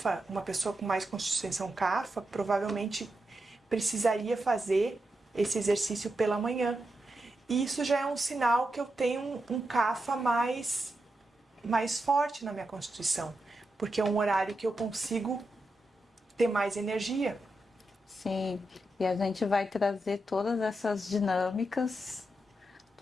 uma pessoa com mais constituição Kapha, provavelmente precisaria fazer esse exercício pela manhã. E isso já é um sinal que eu tenho um Kapha mais forte na minha constituição, porque é um horário que eu consigo ter mais energia. Sim, e a gente vai trazer todas essas dinâmicas,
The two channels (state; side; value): normal; both; correlation 0.87